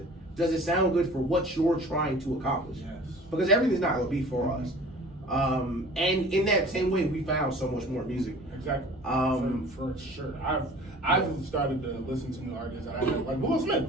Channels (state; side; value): normal; both; correlation 0.45